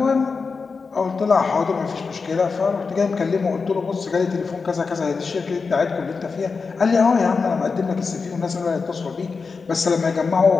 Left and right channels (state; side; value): quieter; right; 4.8 dB